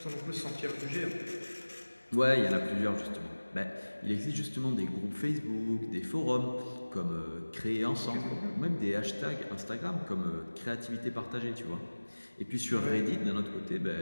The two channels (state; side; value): inverted; both; correlation -1.00